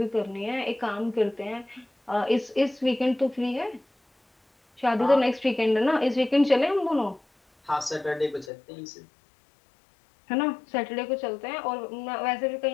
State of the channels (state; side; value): drops out; right; at 8.5 s